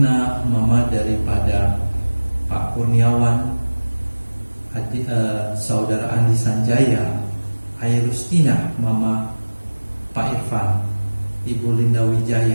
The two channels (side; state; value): both; inverted; correlation -1.00